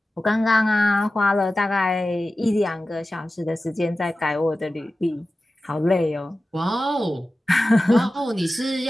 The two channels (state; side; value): normal; both; correlation 0.95